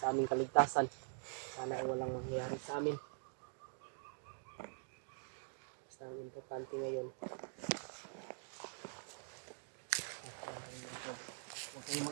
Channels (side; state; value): left; silent; digital silence